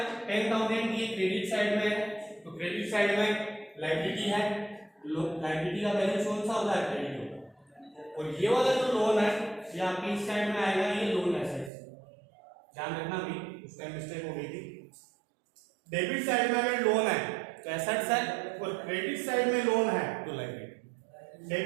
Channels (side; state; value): left; drops out; at 11.7 s